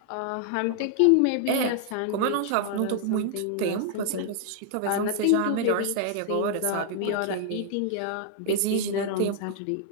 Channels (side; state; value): both; different; correlation 0.00